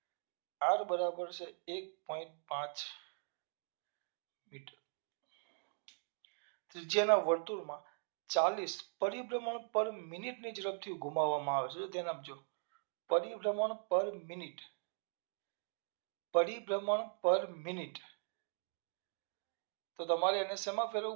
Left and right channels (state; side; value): silent; left; digital silence